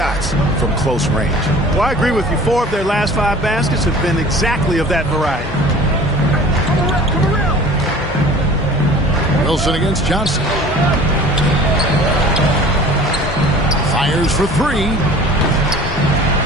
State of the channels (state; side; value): normal; both; correlation 0.45